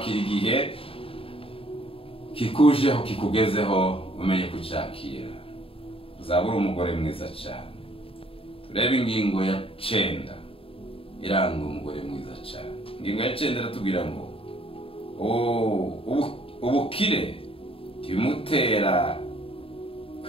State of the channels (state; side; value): late; right; 0.27 ms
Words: igihe kikujeho kikugezeho, umenye kucyakira, uzabura umugore mwiza cyane. Turebe ingingo ya 9 iranga umugore mwiza cyane. Ingingo ya 9 iratubwira ngo ubukire timutera